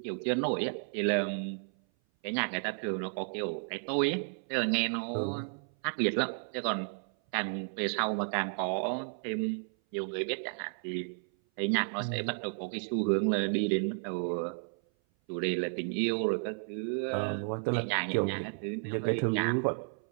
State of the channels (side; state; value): left; silent; 56 dB below the other